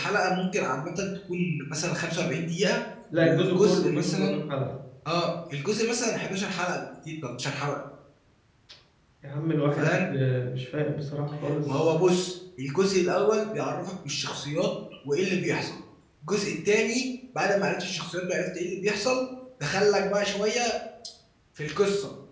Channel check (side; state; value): both; identical; correlation 1.00